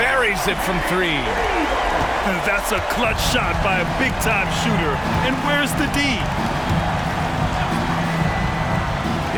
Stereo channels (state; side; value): identical; both; correlation 1.00